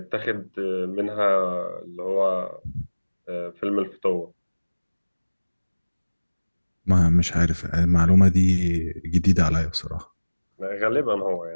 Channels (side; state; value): both; inverted; correlation -1.00